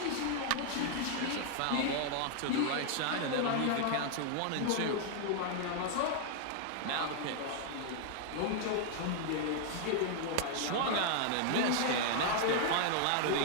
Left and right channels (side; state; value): both; different; correlation 0.00